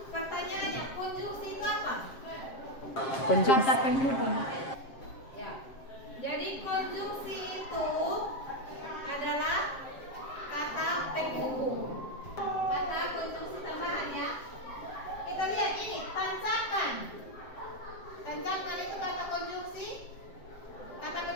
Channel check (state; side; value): late; right; 7.6 ms